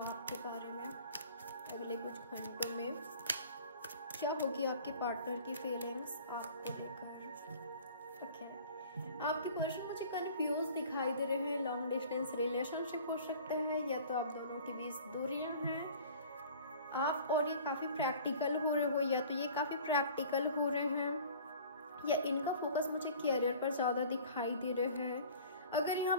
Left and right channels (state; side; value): inverted; both; correlation -0.46